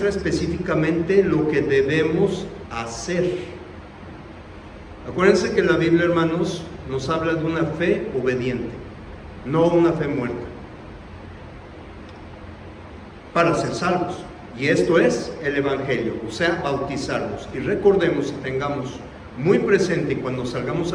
específicamente lo que debemos hacer. Acuérdense que la Biblia, hermanos, nos habla de una fe obediente, no una fe muerta, para ser salvos. Y esto es el Evangelio, o sea, bautizarnos. Y recordemos y tengamos muy presente cuando salgamos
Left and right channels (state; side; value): identical; both; correlation 1.00